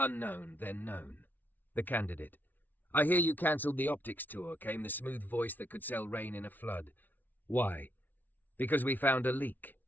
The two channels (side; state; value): right; late; 0.084 ms